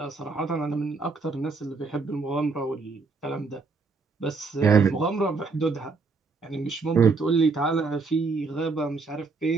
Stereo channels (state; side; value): quieter; left; 4.2 dB